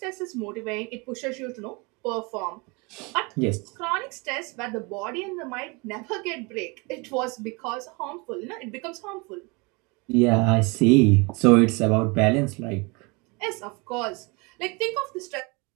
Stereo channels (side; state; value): left; quieter; 28.4 dB